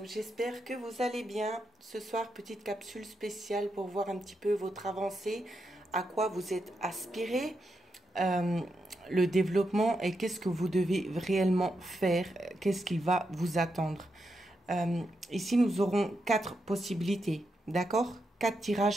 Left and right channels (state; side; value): normal; both; correlation 0.84